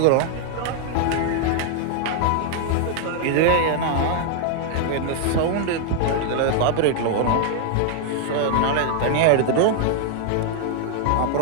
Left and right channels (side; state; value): both; different; correlation 0.00